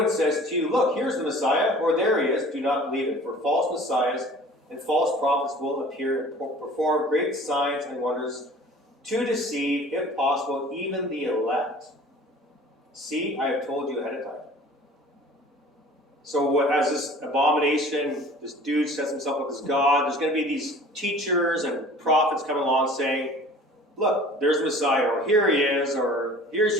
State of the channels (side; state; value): both; normal; correlation 0.46